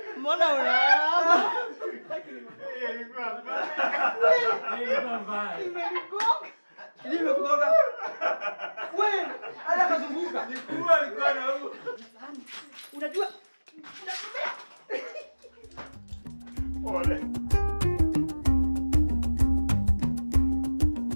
Mbona unaama? Nimekugonga. Wewe, ala kazunguka. Unajua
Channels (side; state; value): both; inverted; correlation -1.00